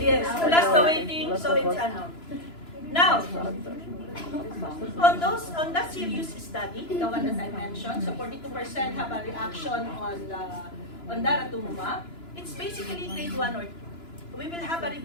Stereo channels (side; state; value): right; late; 2.9 ms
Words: Yes, plus the waiting, so it's ano. Now, on that serious study, the one that I mentioned, so 42% have a reaction on Daratumumab. It's basically grade 1 or 2. We will have a